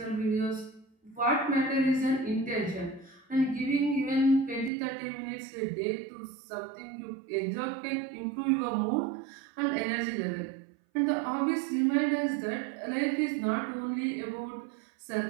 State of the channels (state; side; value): drops out; left; at 4.7 s